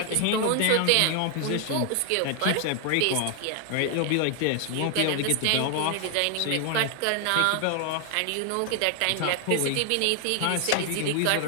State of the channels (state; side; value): different; both; correlation 0.00